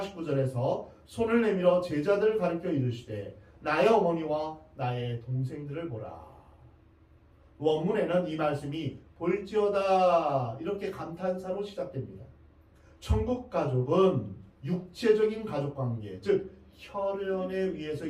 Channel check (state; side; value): identical; both; correlation 1.00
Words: 손을 내밀어 제자들을 가리켜 이르시되 나의 어머니와 나의 동생들을 보라. 원문에는 이 말씀이 볼지어다 이렇게 감탄사로 시작됩니다. 천국 가족은 육체적인 가족관계, 즉 혈연에 의해서